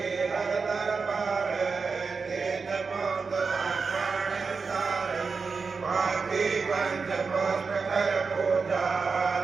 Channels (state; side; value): quieter; left; 4.8 dB